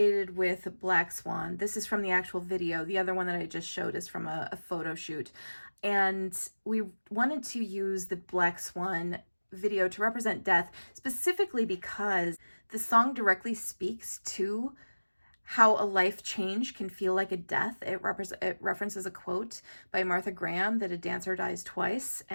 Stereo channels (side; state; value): both; inverted; correlation -1.00